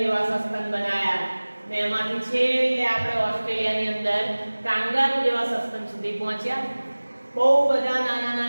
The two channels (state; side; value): inverted; both; correlation -1.00